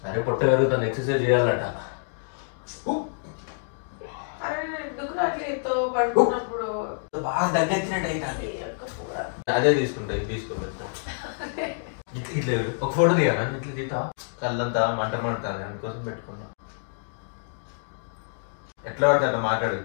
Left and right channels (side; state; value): right; silent; digital silence